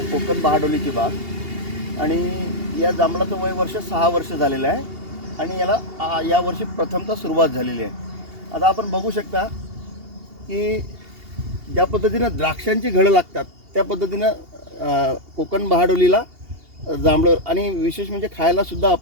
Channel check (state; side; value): late; left; 2.8 ms